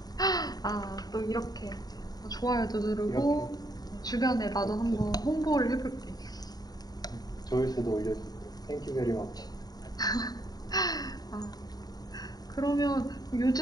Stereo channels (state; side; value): late; right; 0.19 ms